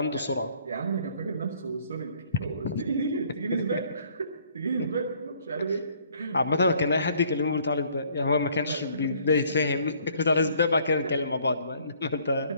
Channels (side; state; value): both; inverted; correlation -0.61